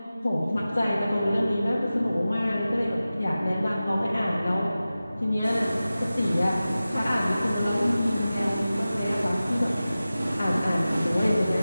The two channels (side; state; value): both; inverted; correlation -0.96